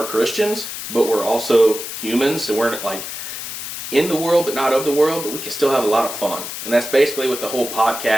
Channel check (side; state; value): left; noise; hiss, 7 dB below the sound